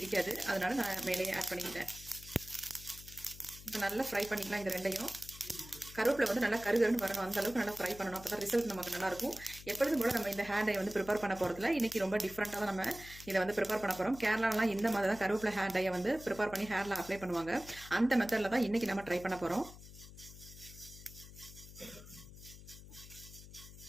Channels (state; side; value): noise; left; hum, 16 dB below the sound